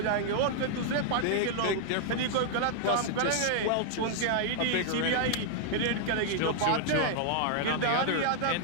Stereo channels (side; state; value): both; different; correlation -0.01